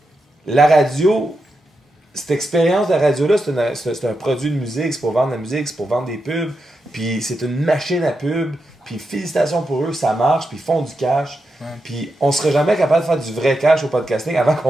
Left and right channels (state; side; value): normal; both; correlation 0.87